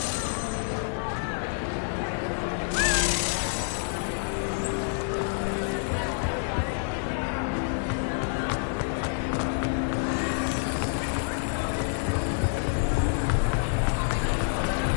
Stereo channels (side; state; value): right; silent; digital silence